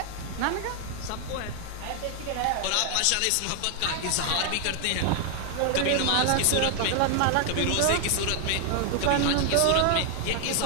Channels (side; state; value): both; different; correlation 0.00